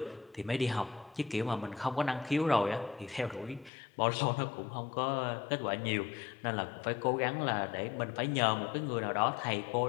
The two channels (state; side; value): drops out; right; at 3.7 s